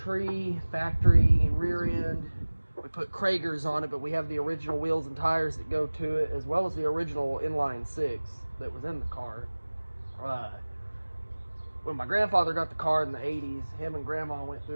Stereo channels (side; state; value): both; inverted; correlation -1.00